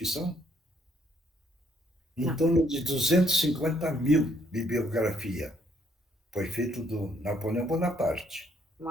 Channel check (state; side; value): normal; both; correlation 0.69